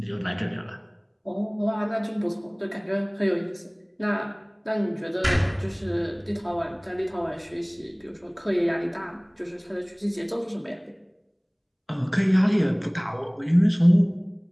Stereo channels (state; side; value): identical; both; correlation 1.00